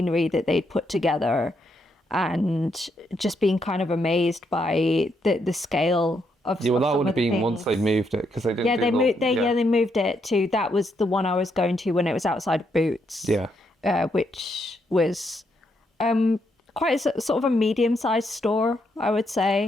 that they'd put together, and just being kind of amazed by the scale of Yeah, well, of that some would of have the been once they things. moved it, because they didn't. Yeah, do they the- moved. They moved it to. That was the one I was going to when it was outside of Boots. Yeah. Which was quite sort of a medium-sized store, I would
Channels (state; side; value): normal; both; correlation 0.77